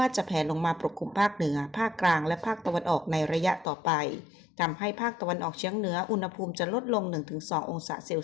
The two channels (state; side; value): drops out; right; at 3.7 s